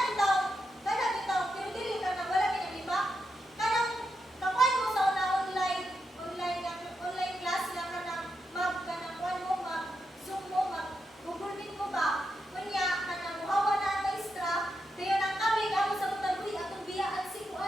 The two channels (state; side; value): normal; both; correlation 0.85